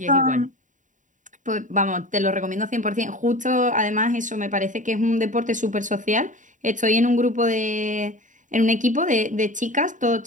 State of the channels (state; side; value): late; left; 0.37 ms